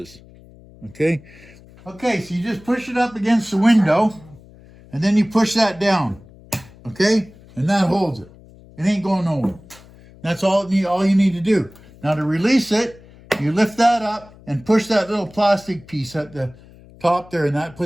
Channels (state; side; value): noise; left; hum, 23 dB below the sound